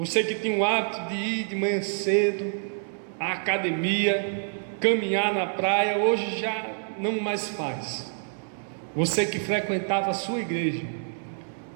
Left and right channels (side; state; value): left; silent; digital silence